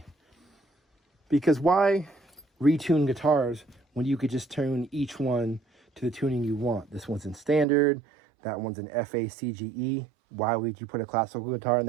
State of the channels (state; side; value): drops out; left; at 7.7 s